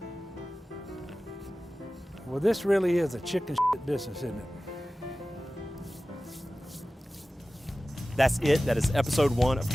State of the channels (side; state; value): both; normal; correlation 0.96